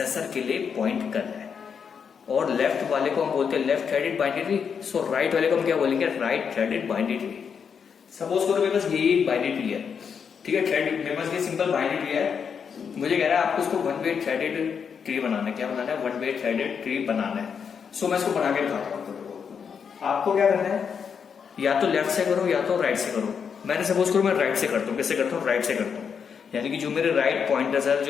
के लिए पॉइंट करना है। और लेफ्ट वाले को हम बोलते हैं लेफ्ट थ्रेडेड बाइनरी ट्री, सो राइट वाले को हम क्या बोलेंगे? Right threaded binary tree. Suppose करो मेरे पास यही बाइनरी ट्री है, ठीक है, थ्रेड, मेरे पास ये सिंपल बाइनरी ट्री है, मुझे कह रहा है आपको इसको वन वे थ्रेडेड ट्री बनाना है। क्या बनाना है? वन वे थ्रेडेड ट्री बनाना है। सो मैं इसको बना के दिखाता हूँ आपको। क्या करना है? या तो लेफ्ट से करो या तो राइट से करो। मैंने सपोज करो मैं राइट से करता हूँ। कैसे करता हूँ? राइट से करता हूँ, यानी कि जो मेरे राइट पॉइंटर्स है,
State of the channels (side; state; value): right; quieter; 6.7 dB